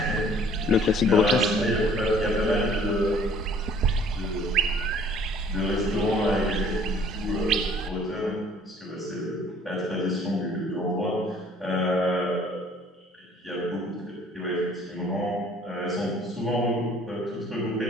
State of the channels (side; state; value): both; normal; correlation 0.55